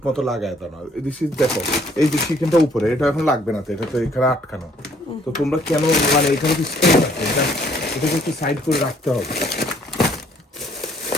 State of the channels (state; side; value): normal; both; correlation 0.62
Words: মতো লাগায় দাও না। দিস ইজ, দেখো এই যে চিকেনটা উপরে, এটা এখন লাগবে না তো, এটা তো এখানে আটকানো। তো তোমরা কেন মানে এখানে কি স্পেস আছে, এটাকে একটু সাইড করে রাখতে হবে